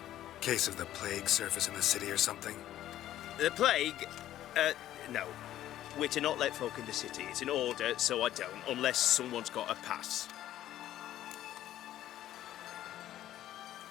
Case of the plague surface in the city or something? The plague? No. We're to not let folk in the city. It's an order, so I don't, unless someone's got a pass.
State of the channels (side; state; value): right; quieter; 12.9 dB